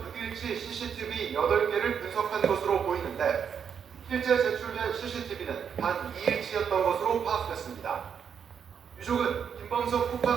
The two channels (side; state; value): left; quieter; 7.4 dB